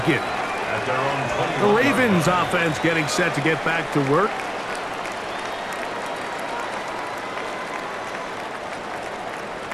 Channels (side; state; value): both; identical; correlation 1.00